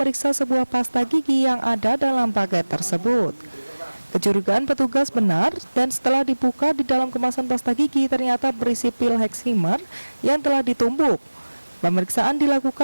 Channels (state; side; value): inverted; both; correlation -1.00